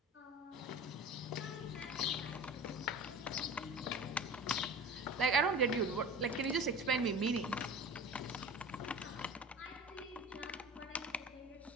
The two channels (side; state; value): both; normal; correlation 0.36